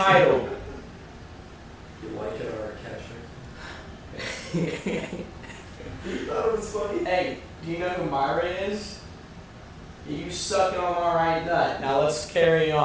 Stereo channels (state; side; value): identical; both; correlation 1.00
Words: You like it or a catcher? You thought it was funny? Hey, do you know who Myra is? You suck it on my right nut. Now let's carry